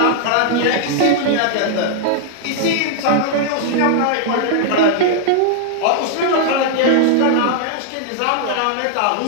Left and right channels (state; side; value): different; both; correlation -0.01